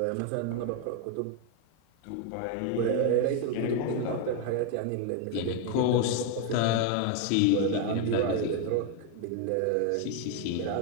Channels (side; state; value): both; different; correlation 0.01